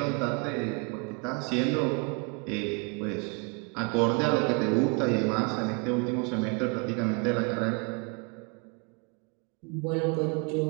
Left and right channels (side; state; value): left; quieter; 33.3 dB